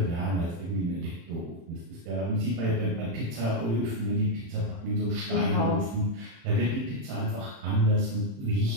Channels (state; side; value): late; left; 35 ms